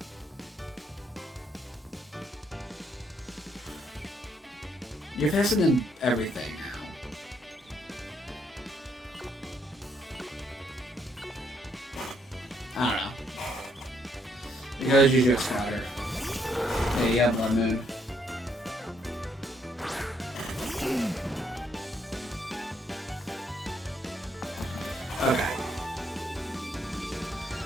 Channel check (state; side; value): normal; both; correlation 0.72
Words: You're faster than everything now. I don't know. Because you just got her. Yeah, you have Blood Moon. Okay.